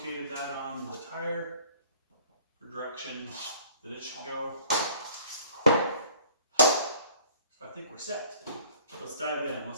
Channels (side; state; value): both; inverted; correlation -0.53